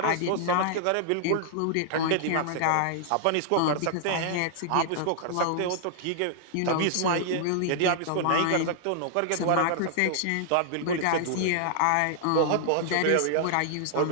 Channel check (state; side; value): different; both; correlation -0.01